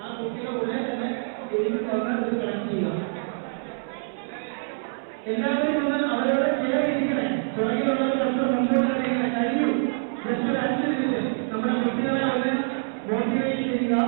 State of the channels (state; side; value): silent; left; 61 dB below the other